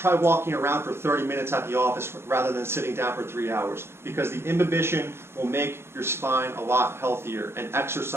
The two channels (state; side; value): late; left; 0.12 ms